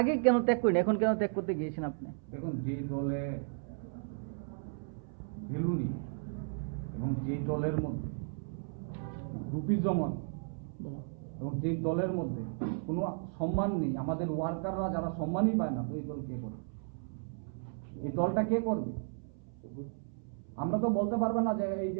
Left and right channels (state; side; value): silent; left; 55 dB below the other